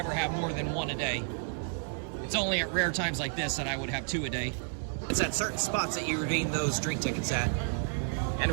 have more than 1 a day. It's only at rare times like this that I would have 2 a day. It's at certain spots that you redeem those drink tickets at. And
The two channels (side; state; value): left; silent; 57 dB below the other